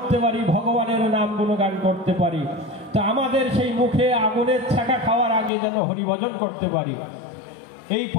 পারি, ভগবানের নাম গুণগান করতে পারি। তো আমাদের সেই মুখে আগুনের ছ্যাঁকা খাওয়ার আগে যেন হরিভজন করতে পারি। এই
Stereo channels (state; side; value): drops out; right; at 5.5 s